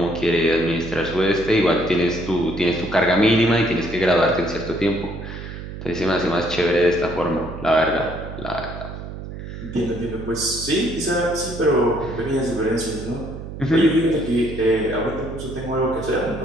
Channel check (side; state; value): right; noise; hum, 10 dB below the sound